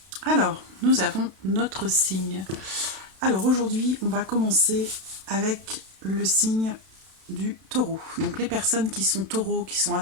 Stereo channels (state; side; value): late; left; 32 ms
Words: Alors, nous avons notre signe. Alors aujourd'hui, on va commencer avec le signe du taureau. Donc les personnes qui sont taureaux, qui sont